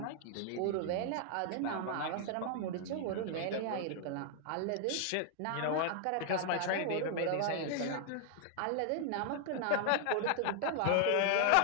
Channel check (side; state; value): both; different; correlation 0.00